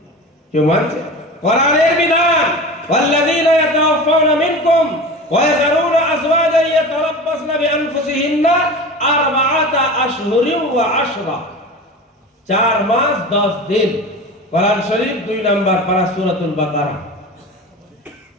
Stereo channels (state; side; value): normal; both; correlation 0.32